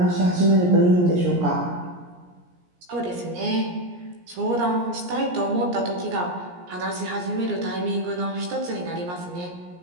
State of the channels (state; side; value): late; left; 17 ms